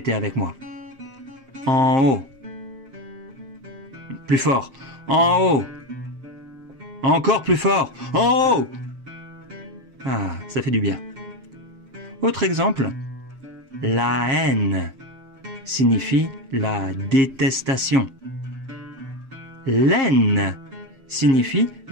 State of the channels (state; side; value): late; left; 7.5 ms